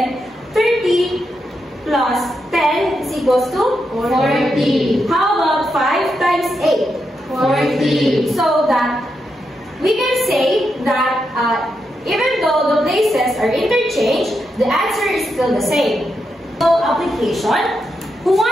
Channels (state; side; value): normal; both; correlation 0.84